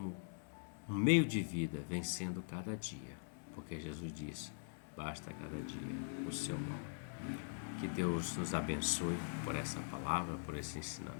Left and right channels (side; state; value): right; silent; digital silence